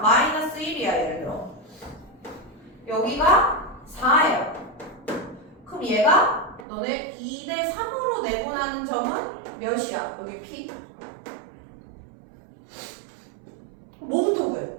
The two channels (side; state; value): left; drops out; at 6.7 s